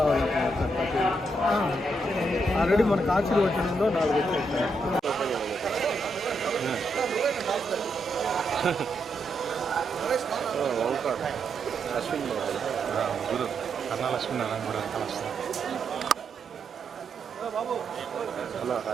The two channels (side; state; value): both; normal; correlation 0.80